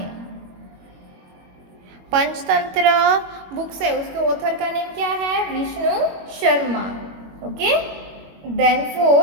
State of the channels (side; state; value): left; late; 21 ms